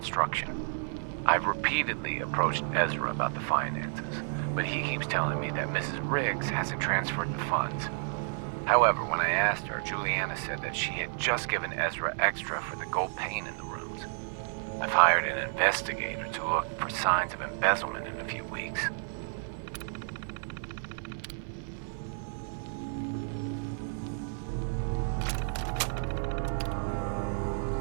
I've repeatedly approached Ezra about the finances, but he keeps telling me that Mrs. Riggs hasn't transferred the funds. However, when I asked her, Juliana said that she had just given Ezra extra for the gold paint in the rooms. I've hired an investigator to look for signs of embezzlement in a few weeks.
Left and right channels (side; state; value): left; silent; 57 dB below the other